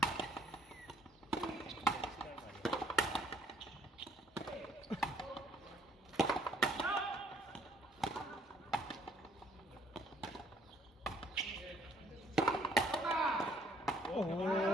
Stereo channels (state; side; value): normal; both; correlation 0.65